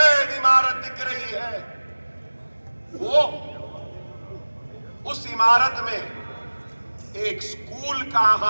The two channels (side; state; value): both; inverted; correlation -1.00